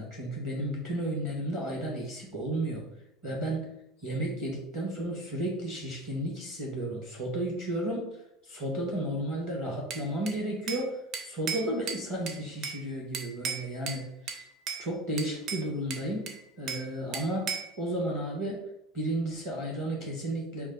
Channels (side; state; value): both; normal; correlation 0.32